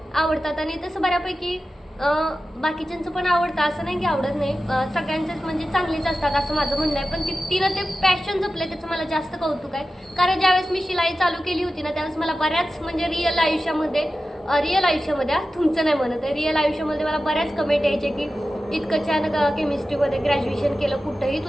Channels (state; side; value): normal; both; correlation 0.94